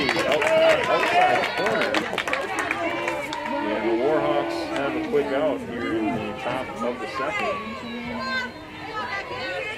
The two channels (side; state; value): both; identical; correlation 1.00